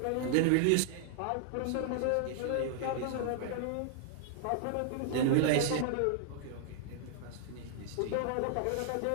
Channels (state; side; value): different; both; correlation -0.01